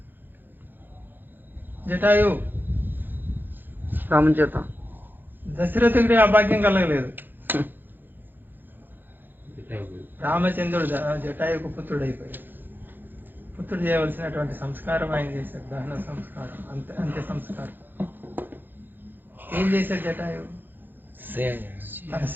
జటాయు రామచేత దశరథుడికి ఆ భాగ్యం కలగలేదు. రామచంద్రుడు జటాయుకు పుత్రుడు అయిపోయాడు. పుత్రుడు చేయవలసినటువంటి సంస్కారం ఆయన చేశాడు, దహన సంస్కారం, అంత్య సంస్కారం. ఏం చేశాడు జటాయు? తన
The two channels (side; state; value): left; late; 0.091 ms